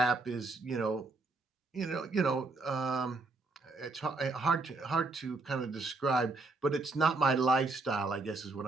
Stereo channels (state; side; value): quieter; left; 3.4 dB